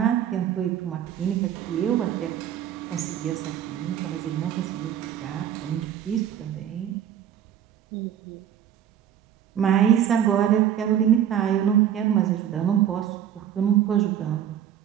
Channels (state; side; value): quieter; left; 10.0 dB